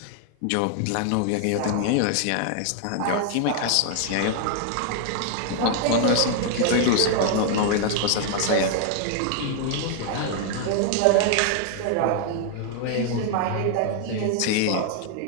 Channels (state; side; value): different; both; correlation 0.00